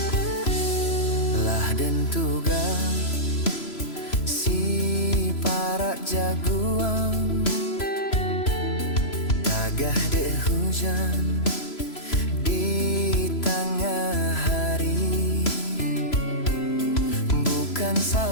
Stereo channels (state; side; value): late; right; 3.0 ms